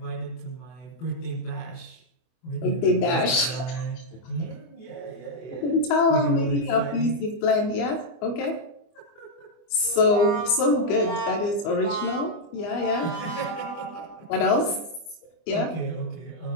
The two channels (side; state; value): right; late; 24 ms